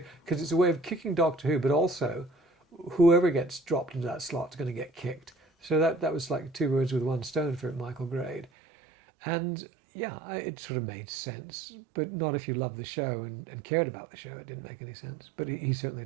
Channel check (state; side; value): drops out; left; at 8.5 s